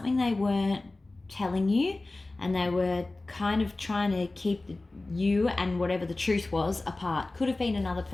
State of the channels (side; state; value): right; quieter; 3.0 dB